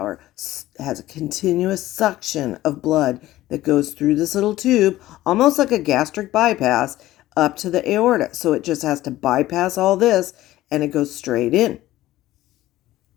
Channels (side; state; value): right; quieter; 15.6 dB